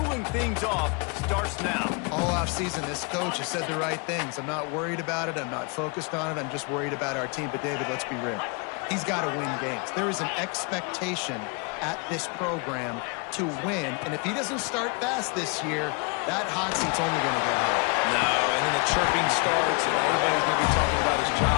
things off starts now. All offseason, this coach has said the right things. I'm not worried about it. I'm not focused on it. I'm just worried about our team. But, David, let's be real. He's got to win games. There is an expectation at this program to win. And if he doesn't start fast this year, that hot seat's only going to get higher. No, and then the chirping starts, and everybody's going to be talking about his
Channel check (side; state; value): right; quieter; 32.2 dB